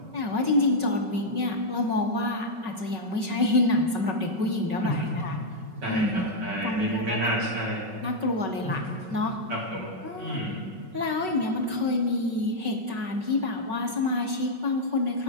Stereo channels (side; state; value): left; late; 5.3 ms